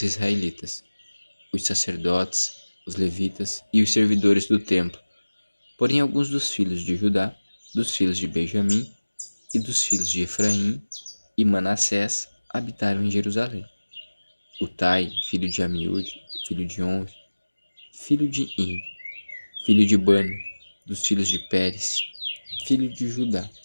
israelitas, os sacerdotes, os levitas e os servidores do templo. Porém, alguns dos filhos de Judá, dos filhos de Benjamim e dos filhos de Efraim e Manassés habitaram em Jerusalém. Utai, filho de Amiúde, filho de Onri, filho de In, filho de Bani, dos filhos de Pérez, filho de Judá,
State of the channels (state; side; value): inverted; both; correlation -1.00